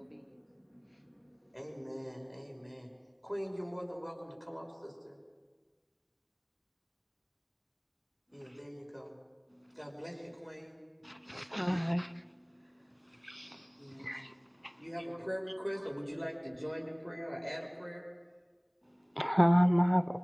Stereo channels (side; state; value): both; identical; correlation 1.00